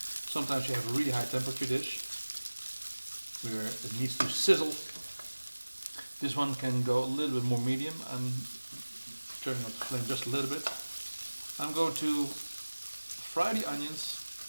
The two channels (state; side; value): inverted; both; correlation -1.00